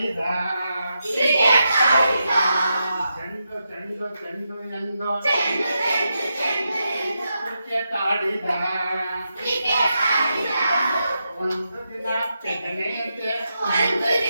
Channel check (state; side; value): inverted; both; correlation -0.86